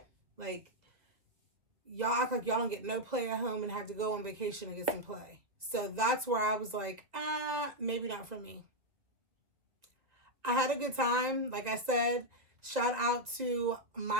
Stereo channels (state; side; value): late; left; 2.2 ms